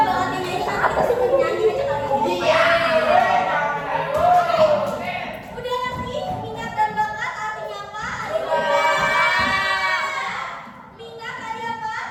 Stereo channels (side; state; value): both; identical; correlation 1.00